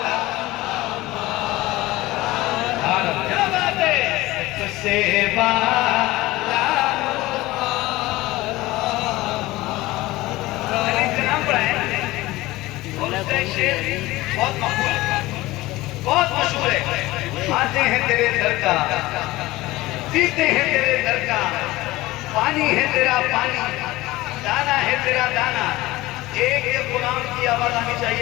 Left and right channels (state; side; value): quieter; right; 18.8 dB